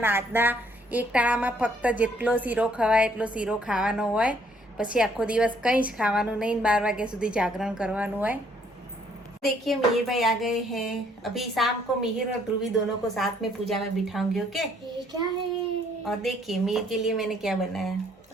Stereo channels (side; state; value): both; normal; correlation 0.65